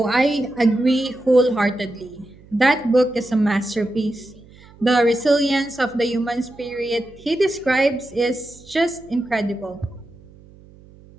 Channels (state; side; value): noise; right; hum, 24 dB below the sound